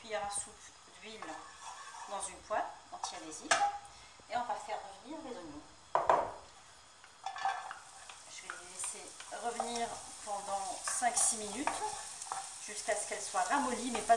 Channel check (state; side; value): identical; both; correlation 1.00